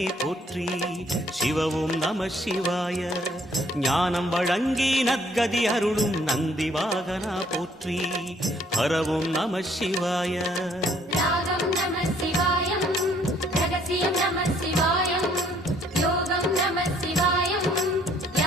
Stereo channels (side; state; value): both; normal; correlation 0.64